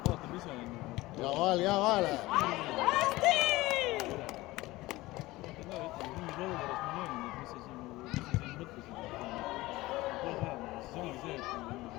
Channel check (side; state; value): right; quieter; 19.2 dB